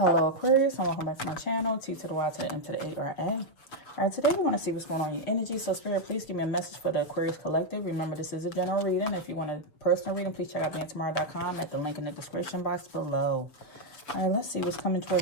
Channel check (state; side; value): late; right; 6.7 ms